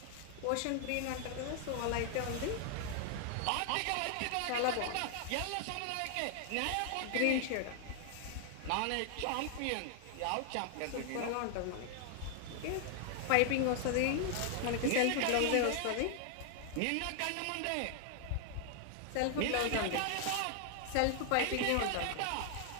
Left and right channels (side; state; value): both; different; correlation 0.00